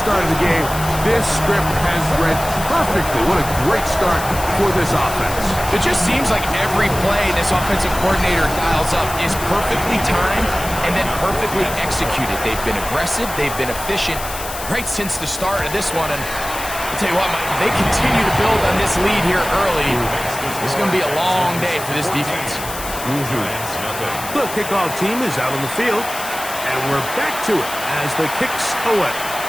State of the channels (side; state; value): left; noise; hiss, 10 dB below the sound